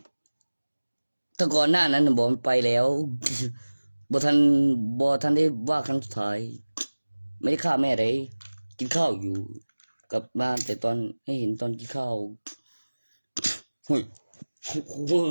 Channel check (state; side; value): inverted; both; correlation -1.00